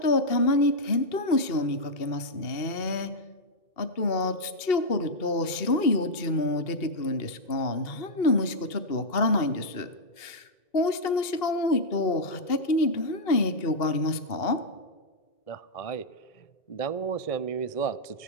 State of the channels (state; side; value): late; right; 2.7 ms